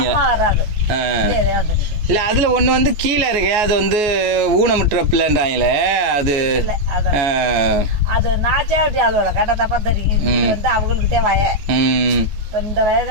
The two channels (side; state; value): left; late; 14 ms